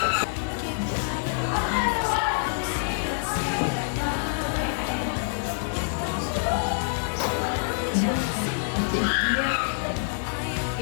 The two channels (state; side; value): silent; right; 55 dB below the other